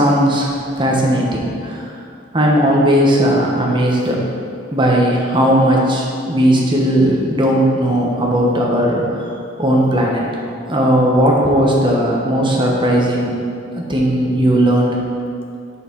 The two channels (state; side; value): normal; both; correlation 0.59